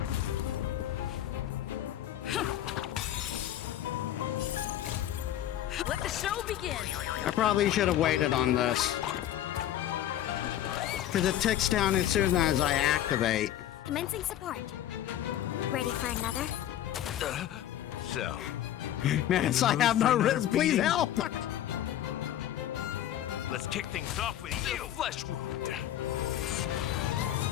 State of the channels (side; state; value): right; quieter; 12.0 dB